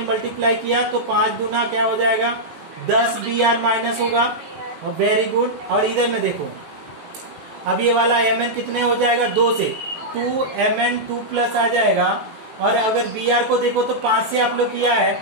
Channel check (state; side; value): late; left; 18 ms